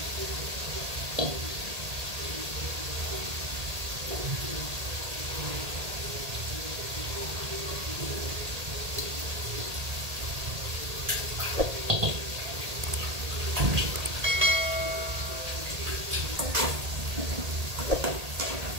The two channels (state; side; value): late; left; 1.8 ms